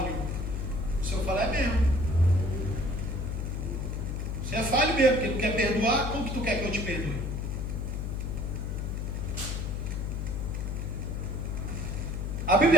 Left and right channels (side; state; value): left; noise; hum, 2 dB below the sound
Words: O Senhor fala: é mesmo. Você é falho mesmo, porque não quer perdoar. Como que tu quer que eu te perdoe? A